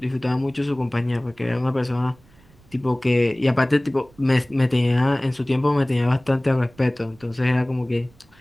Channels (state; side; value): noise; right; rumble, 29 dB below the sound